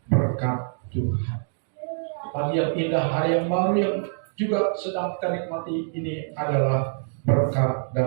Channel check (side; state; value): left; silent; digital silence